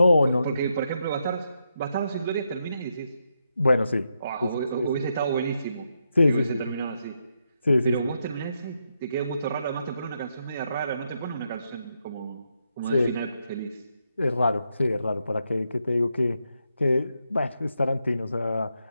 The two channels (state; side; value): inverted; both; correlation -0.82